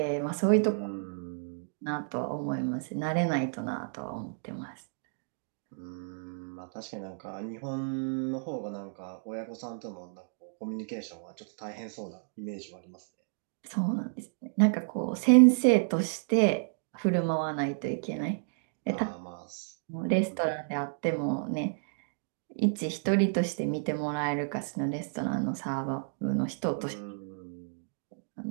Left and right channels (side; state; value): left; silent; digital silence